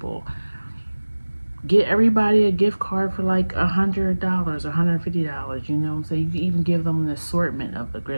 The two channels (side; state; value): both; inverted; correlation -1.00